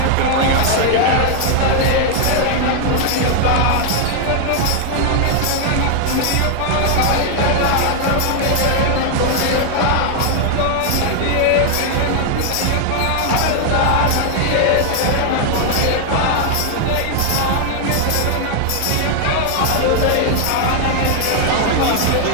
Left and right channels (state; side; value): different; both; correlation 0.00